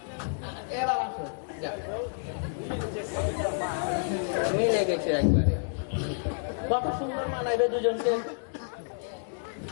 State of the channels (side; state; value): right; silent; digital silence